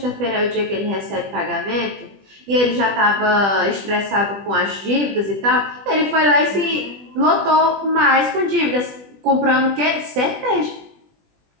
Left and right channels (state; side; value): late; left; 20 ms